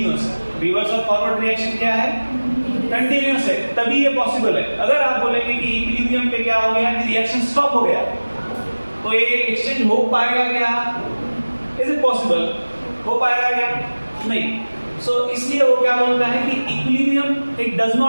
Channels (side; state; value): both; inverted; correlation -1.00